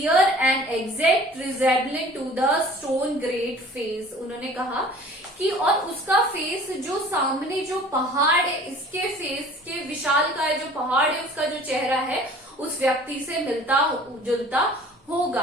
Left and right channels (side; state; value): both; normal; correlation 0.48